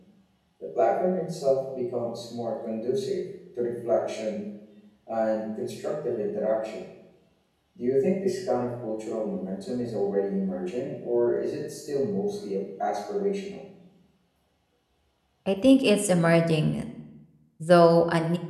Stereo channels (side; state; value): both; identical; correlation 1.00